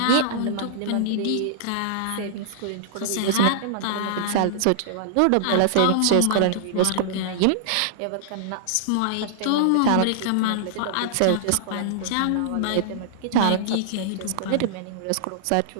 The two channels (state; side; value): different; both; correlation -0.01